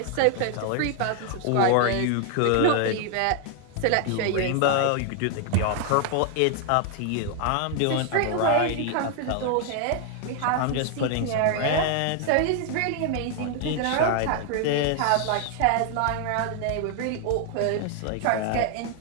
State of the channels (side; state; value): both; different; correlation 0.00